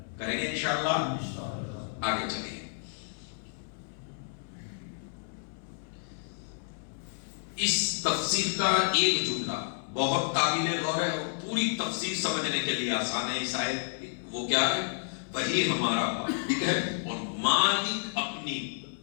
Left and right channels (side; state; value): right; silent; 57 dB below the other